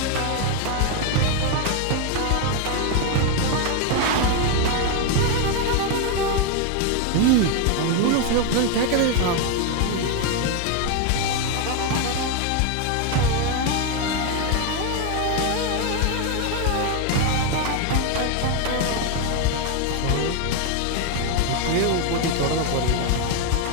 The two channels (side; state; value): both; different; correlation 0.01